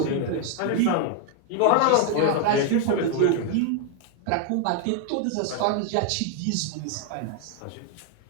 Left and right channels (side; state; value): both; different; correlation 0.00